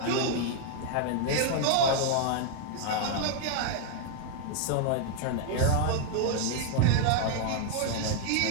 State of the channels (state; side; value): different; both; correlation 0.00